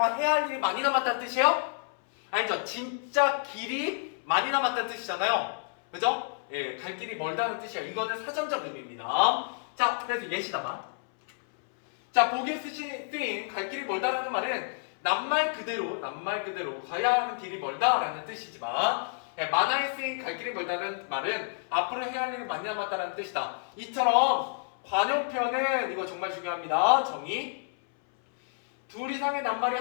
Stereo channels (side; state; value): right; silent; 58 dB below the other